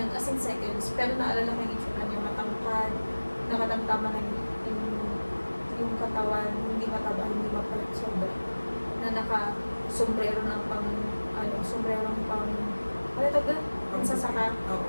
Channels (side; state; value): both; inverted; correlation -1.00